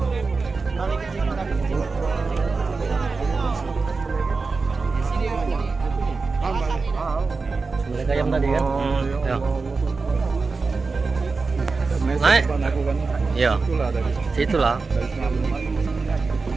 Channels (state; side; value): quieter; left; 4.2 dB